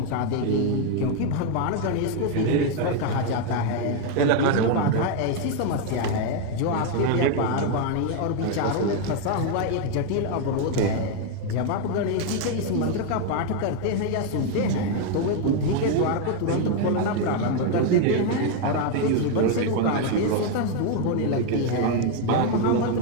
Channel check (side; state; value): both; different; correlation 0.01